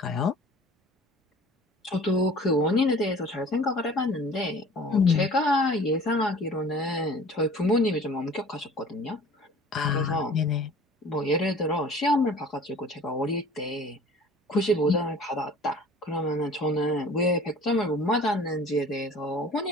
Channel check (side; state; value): both; normal; correlation 0.46